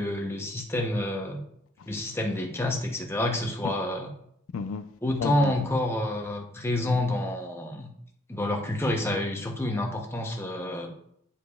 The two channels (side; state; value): both; normal; correlation 0.66